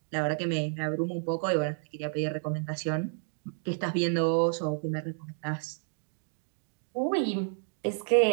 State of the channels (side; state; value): left; silent; digital silence